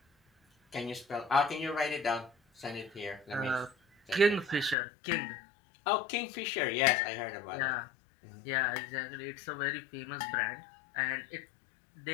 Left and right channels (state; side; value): drops out; right; at 4.8 s